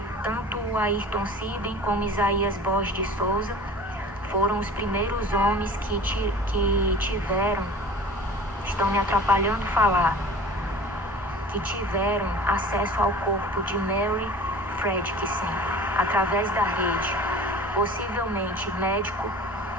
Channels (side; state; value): both; normal; correlation 0.41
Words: Tanto o Ayrton Siben como Isaías Borges de Souza foram os primeiros homens que tiveram, estão me atrapalhando falar, que tiveram acesso ao corpo de Mary Fredrickson através da rede. Possivelmente médico,